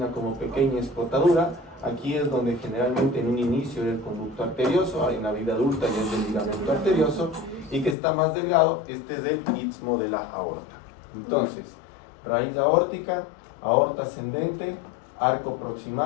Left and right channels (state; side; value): drops out; right; at 8.0 s